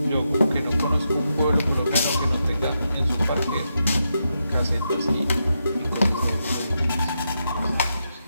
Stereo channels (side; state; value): both; inverted; correlation -0.85